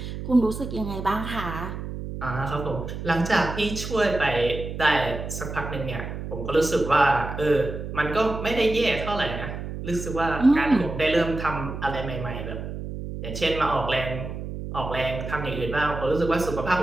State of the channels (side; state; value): right; noise; hum, 7 dB below the sound